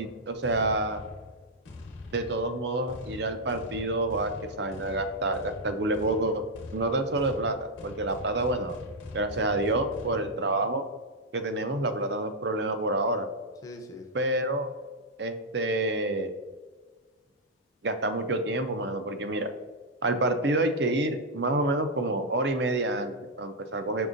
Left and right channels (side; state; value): both; normal; correlation -0.03